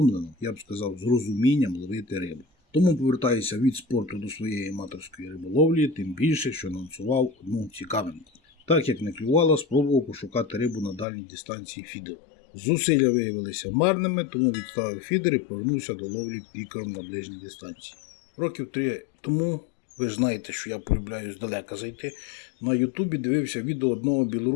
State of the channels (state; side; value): drops out; right; at 11.1 s